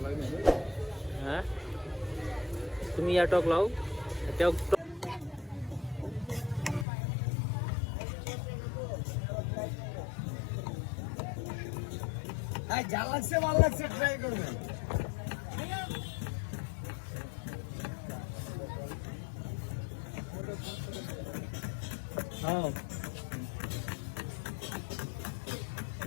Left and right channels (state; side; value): drops out; right; at 6.9 s